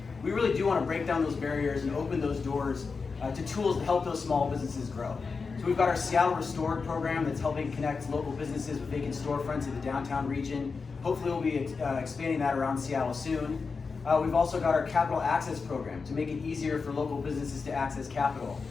we really do want to break down those barriers and open those doors to tools to help those small businesses grow. So we've got our Seattle Restored program that's helping connect local businesses with vacant storefronts in the downtown region. Hopefully we'll be expanding that around Seattle soon. We've also got our Capital Access program to make it easier for local businesses to access capital.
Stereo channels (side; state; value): right; quieter; 4.8 dB